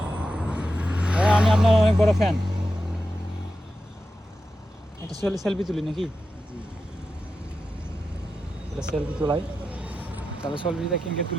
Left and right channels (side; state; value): both; normal; correlation 0.89